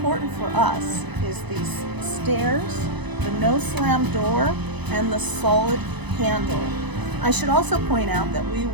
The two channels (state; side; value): late; left; 0.99 ms